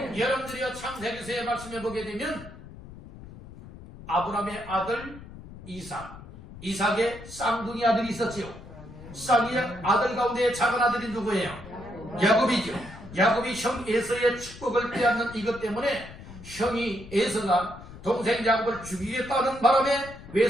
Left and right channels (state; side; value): noise; left; rumble, 16 dB below the sound